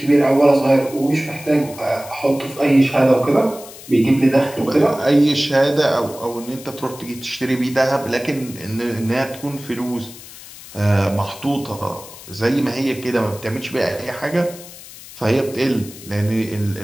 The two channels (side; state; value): left; noise; hiss, 17 dB below the sound